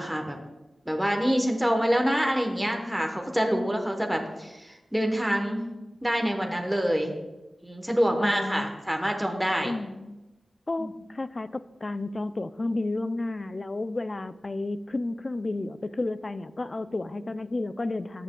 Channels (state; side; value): normal; both; correlation 0.98